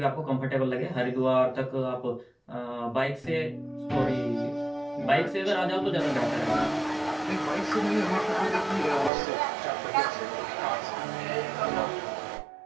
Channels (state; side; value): drops out; left; at 9.1 s